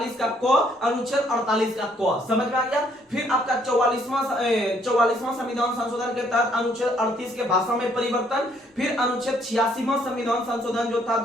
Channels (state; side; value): normal; both; correlation 0.66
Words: का क, अनुच्छेद 48 का क। समझ में आ गया? फिर आपका 44वां संविधान संशोधन के तहत अनुच्छेद 38 के भाषा में परिवर्तन। फिर अनुच्छेद 86वां संविधान संशोधन जो था